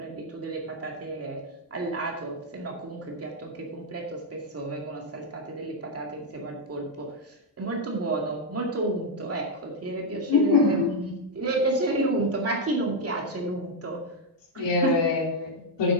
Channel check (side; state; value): both; normal; correlation 0.00